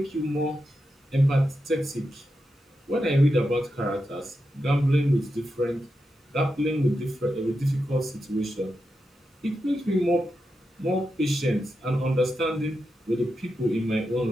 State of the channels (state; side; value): normal; both; correlation 0.88